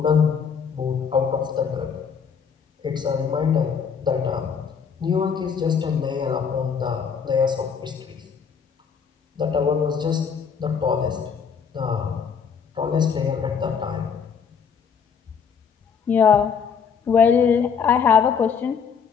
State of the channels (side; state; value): right; quieter; 6.5 dB